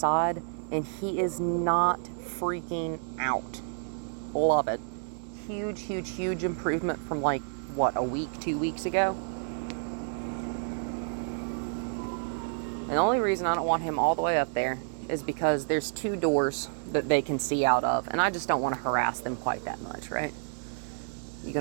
and he is not freaking out. Love it. Huge, huge, huge improvement from like, what, a week, 2 weeks ago? And the only reason I don't want him all the way up there is because there's 2 doors that they can see out of, and I just don't want to harass them quite that much, right? You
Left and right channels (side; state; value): left; silent; 58 dB below the other